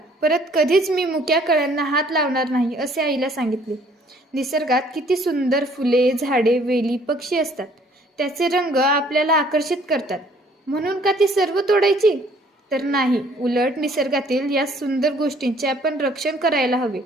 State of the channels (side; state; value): both; normal; correlation 0.59